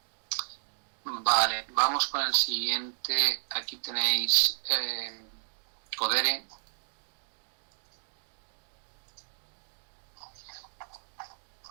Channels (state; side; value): silent; left; digital silence